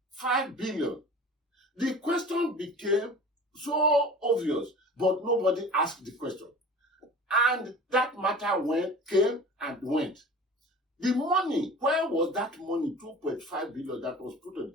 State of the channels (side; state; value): both; normal; correlation 0.40